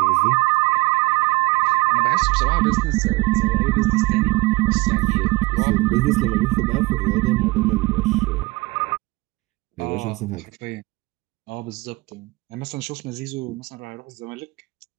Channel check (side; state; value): left; quieter; 22.0 dB